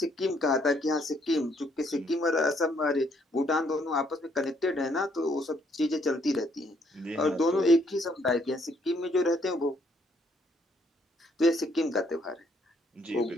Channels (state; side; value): normal; both; correlation 0.69